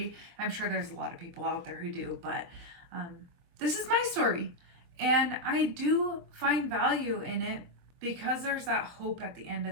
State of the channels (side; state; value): left; late; 23 ms